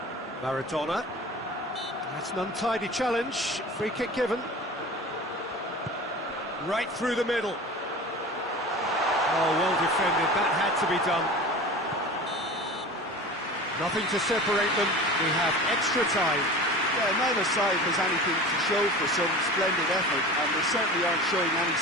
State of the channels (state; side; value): normal; both; correlation 0.36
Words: Maradona. That's an untidy challenge. Free kick given. Right through the middle. Oh, well defended. That had to be done. Nothing to separate them. We have extra time. Yeah, neither side has anything to show for some splendid effort, and they certainly aren't showing any